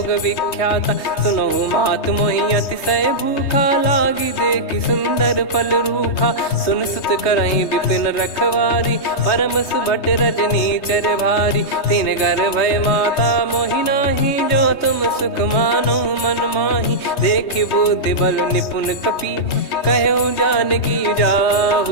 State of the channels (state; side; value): late; right; 3.2 ms